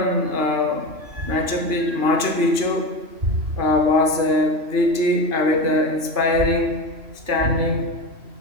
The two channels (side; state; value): left; late; 3.0 ms